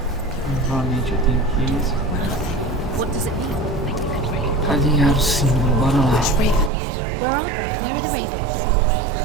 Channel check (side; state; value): left; drops out; at 6.7 s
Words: Novamente eu tenho que What does it mean? alinhar o símbolo. Bora lá. Ravens. Can't you see them?